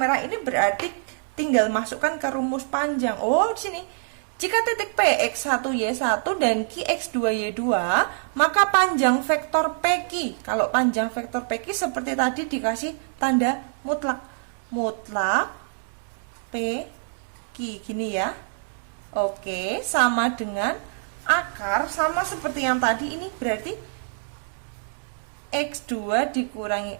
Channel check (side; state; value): left; silent; digital silence